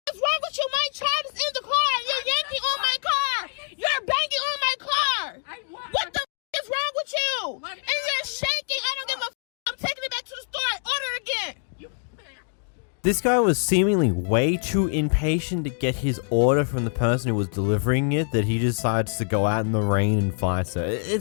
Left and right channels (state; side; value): silent; right; digital silence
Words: is wrong with you? My child is in the car. You're yanking on my car. You're banging on my car. What the is wrong with you? And you're shaking. I don't give a. I'm taking it back to the store. Order it again. This guy was seemingly way too impatient to get his order from the person who was delivering it that he decides to go out in the rain and fight her.